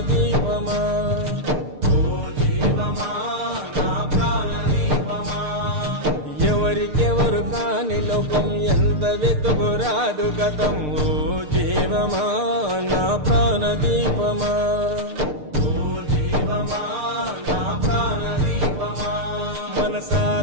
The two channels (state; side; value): late; left; 6.7 ms